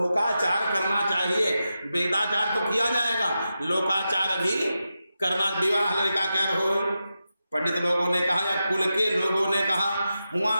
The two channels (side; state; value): both; inverted; correlation -0.90